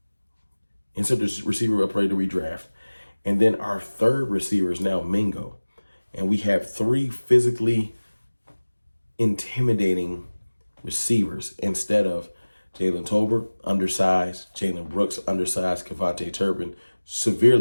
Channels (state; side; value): inverted; both; correlation -1.00